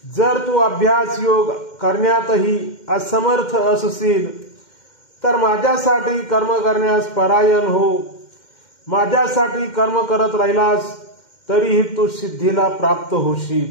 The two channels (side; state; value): right; late; 2.1 ms